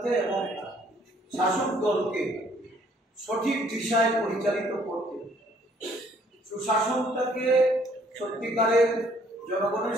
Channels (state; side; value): normal; both; correlation 0.62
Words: এবং শাসক দলকে সঠিক দিশায় পরিচালিত করতে, সুশাসনটাকে সত্যিকারের জনগণের